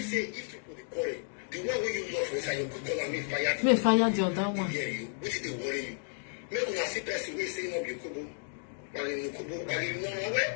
say if you put the correct. The one where you love is you could call me fire. Me fire the other one. Hear you. What did they worry you? Make una see person we say no be kubo. Bali no kubo, bali no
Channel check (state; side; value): silent; right; 56 dB below the other